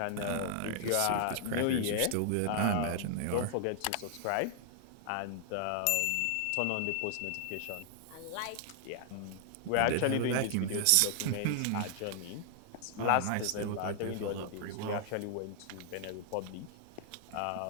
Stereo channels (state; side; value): different; both; correlation -0.01